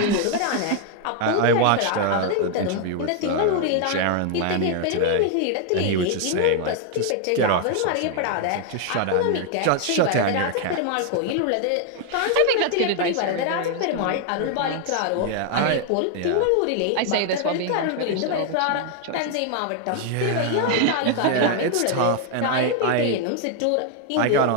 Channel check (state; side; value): different; both; correlation 0.00